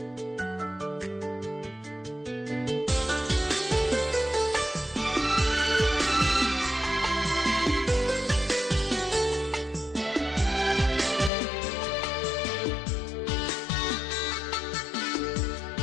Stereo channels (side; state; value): right; drops out; at 11.3 s